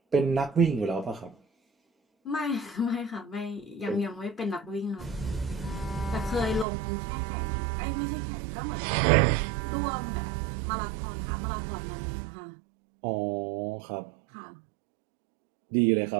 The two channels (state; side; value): drops out; left; at 6.7 s